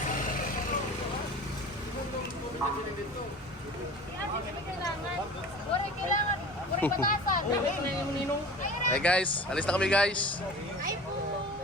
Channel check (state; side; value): normal; both; correlation 0.38